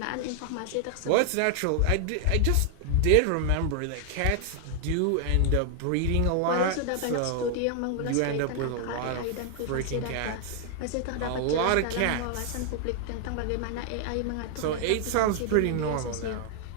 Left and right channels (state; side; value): different; both; correlation 0.00